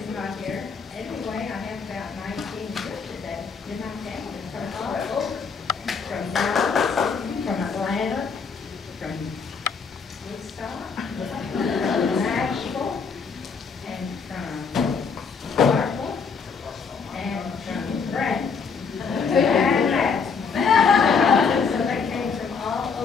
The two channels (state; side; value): quieter; right; 5.6 dB